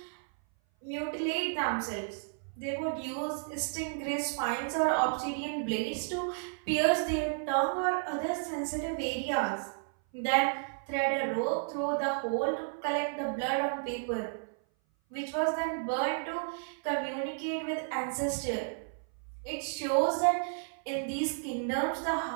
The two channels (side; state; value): left; silent; 56 dB below the other